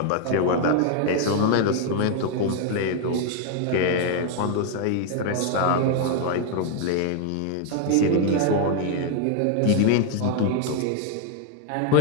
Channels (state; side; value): different; both; correlation 0.01